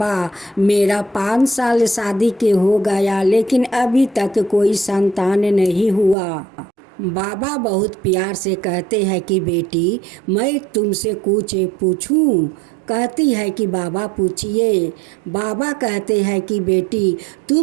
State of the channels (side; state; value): left; drops out; at 6.2 s